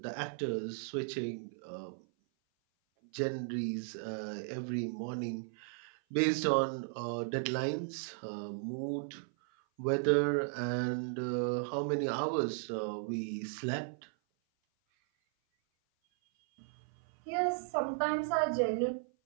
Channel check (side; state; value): left; silent; 54 dB below the other